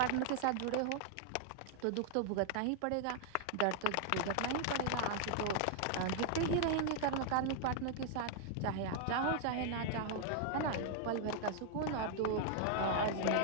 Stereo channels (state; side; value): different; both; correlation 0.00